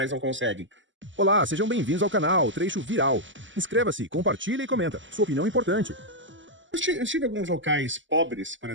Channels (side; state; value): left; late; 0.55 ms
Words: não conseguem? Olá, sejam bem-vindos ao canal Trecho Viral. Inscreva-se, compartilha e comenta. Sua opinião é importante. Eu estive em alguns locais pobres, por